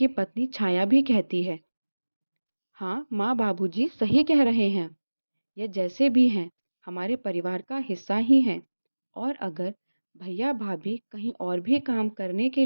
पत्नी छाया भी कहती है, हाँ माँ बाबूजी सही कह रहे हैं, ये जैसे भी हैं हमारे परिवार का हिस्सा ही हैं, और अगर भैया भाभी कहीं और भी काम करने के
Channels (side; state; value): both; inverted; correlation -1.00